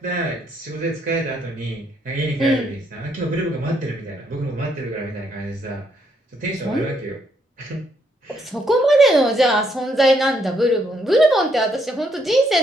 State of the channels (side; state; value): both; normal; correlation 0.73